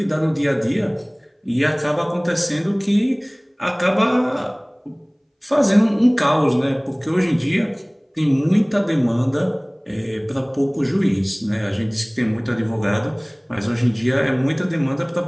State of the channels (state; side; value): identical; both; correlation 1.00